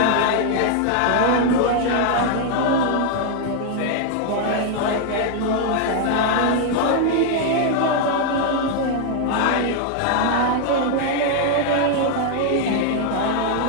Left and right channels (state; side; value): different; both; correlation 0.00